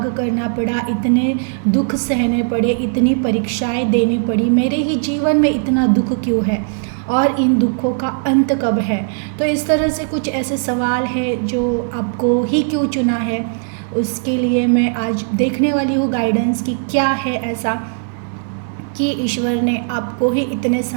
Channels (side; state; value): left; silent; digital silence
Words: करना पड़ा, इतने दुख सहने पड़े, इतनी परीक्षाएं देनी पड़ी, मेरे ही जीवन में इतना दुख क्यों है और इन दुखों का अंत कब है। तो इस तरह से कुछ ऐसे सवाल है जो आपको ही क्यों चुना है, उसके लिए मैं आज देखने वाली हूँ गाइडेंस कि क्या है ऐसा कि ईश्वर ने आपको ही इतने